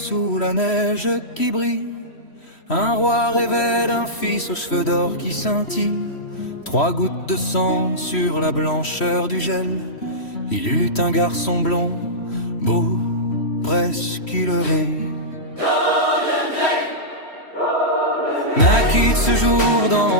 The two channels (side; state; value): right; late; 3.1 ms